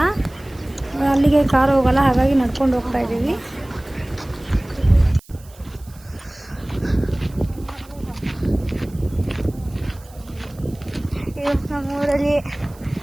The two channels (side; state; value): right; noise; hiss, 25 dB below the sound